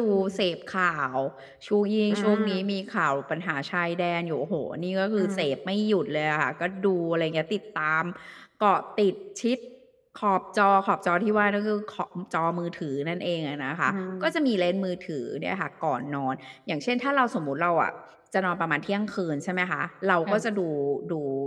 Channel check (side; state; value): both; identical; correlation 1.00